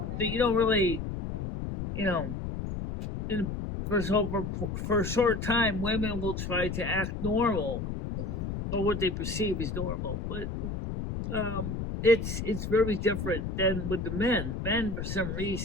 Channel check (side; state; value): left; noise; rumble, 4 dB below the sound